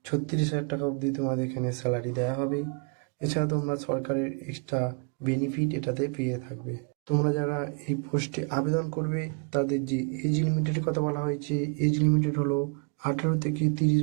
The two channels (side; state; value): left; quieter; 35.5 dB